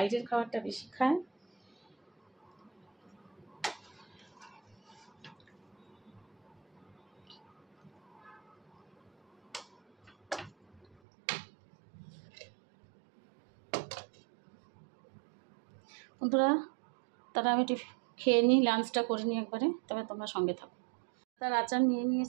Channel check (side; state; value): left; drops out; at 10.9 s